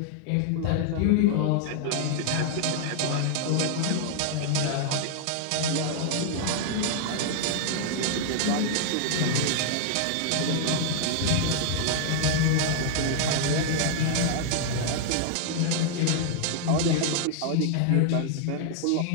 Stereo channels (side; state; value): both; different; correlation 0.00